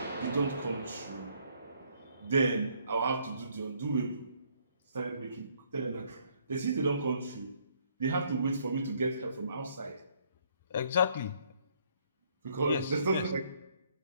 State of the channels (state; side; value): inverted; both; correlation -0.67